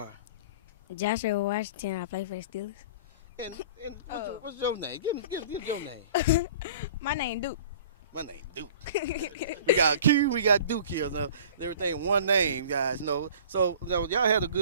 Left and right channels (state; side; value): inverted; both; correlation -0.45